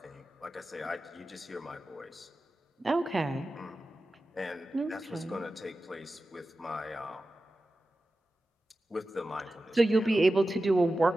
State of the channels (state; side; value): normal; both; correlation 0.93